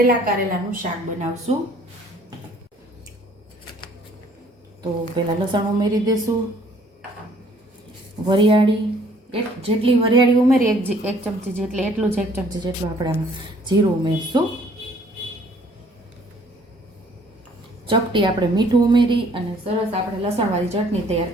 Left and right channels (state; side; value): normal; both; correlation 0.59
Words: કારેલાનું શાક બનાવશું. તો પહેલાં લસણ ઉમેરી દેશું, વરિયાળી જેટલી વરિયાળી ઉમેરી 1 ચમચી જેટલી, એટલું જ 1 ચમચી જેટલું આપણે આમાં જીરું ઉમેરશું. ચપટી આપણે મીઠું ઉમેરી અને સરસ આપણે લસણવાળી ચટણી તૈયાર